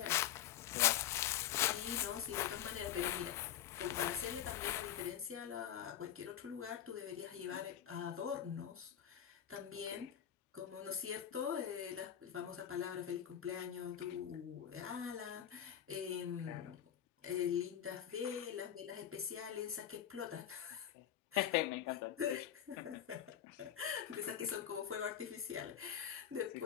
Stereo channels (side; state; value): right; quieter; 10.1 dB